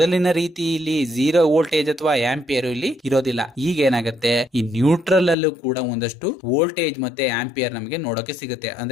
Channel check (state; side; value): drops out; right; at 5.4 s